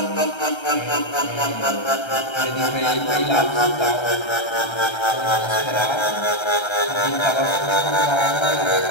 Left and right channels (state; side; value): late; right; 1.3 ms